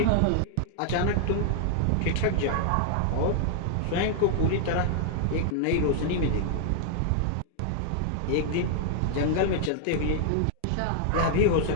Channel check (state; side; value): different; both; correlation -0.01